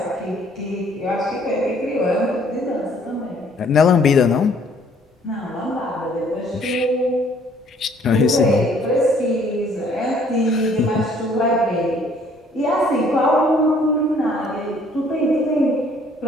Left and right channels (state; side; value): normal; both; correlation 0.60